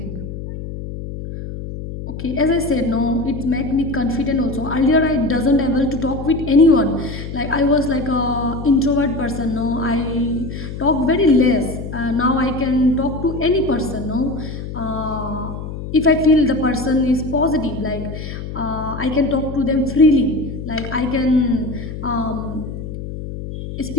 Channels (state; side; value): noise; left; hum, 8 dB below the sound